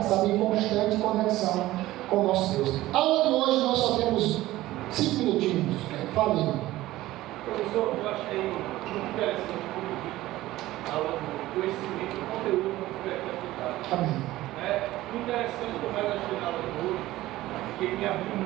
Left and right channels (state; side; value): quieter; left; 16.4 dB